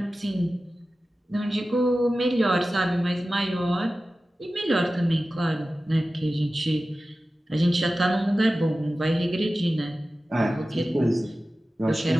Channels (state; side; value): normal; both; correlation 0.95